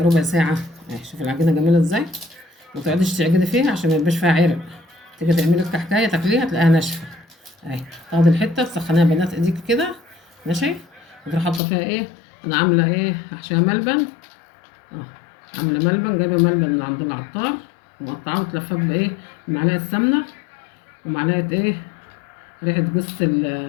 ربع ساعه. شوف العجينه جميله ازاي. ما تقعديش تعجني فيها عشان ما يبقاش فيها عرق. تيجي تعملي الكحكايه تاكليها تلاقيها ناشفه تاخدي الحته تسخنيها بنات ايديك كده. ماشي. وتروحي حاطه فيها انا عامله احشيها ملبن. عامله ملبن، جايبه ملبن من عند العطار ومقطعاه وتلفاه بمعلقه سمنه ومعلقه ريحه جوز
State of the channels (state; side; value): drops out; right; at 11.6 s